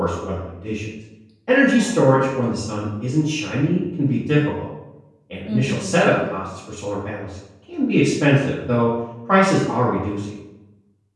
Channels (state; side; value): identical; both; correlation 1.00